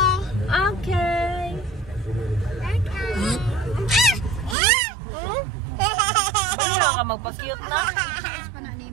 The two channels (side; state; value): left; drops out; at 4.5 s